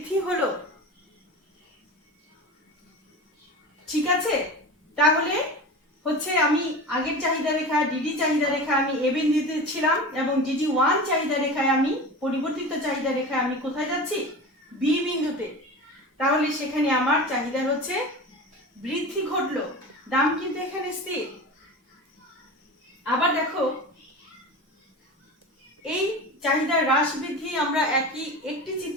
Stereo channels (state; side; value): normal; both; correlation 0.31